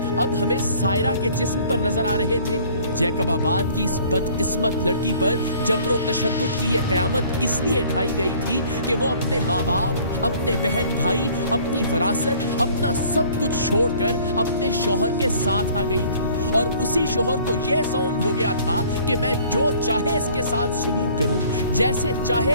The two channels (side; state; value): both; inverted; correlation -0.53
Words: अब हमें सायरा के जिस्म पर नजर आ रहे थे? जैकबाबाद की इस बदकिस्मत लड़की पर जबरो तशद्दुद की यह क़यामत इसलिए ढाई गई थी कि वो अपने माँ बाप, अपने बहन भाई, अपनी विरासत, अपना सब कुछ छोड़कर अपने शौहर के साथ आ गई थी। और उसी शौहर को यह ज़ौम हो गया था कि मैं जो चाहे इसके साथ सलूक करूं, जैसे चाहे